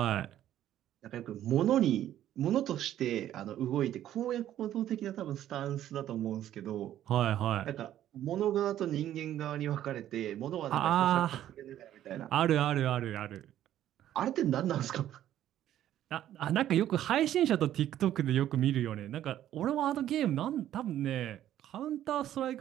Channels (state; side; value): quieter; left; 12.0 dB